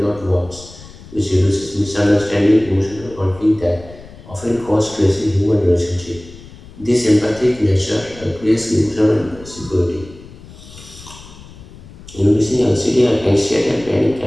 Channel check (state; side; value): noise; left; rumble, 19 dB below the sound